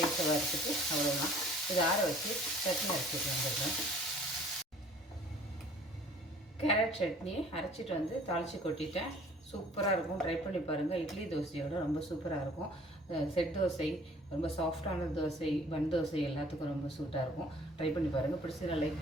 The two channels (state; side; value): normal; both; correlation 0.53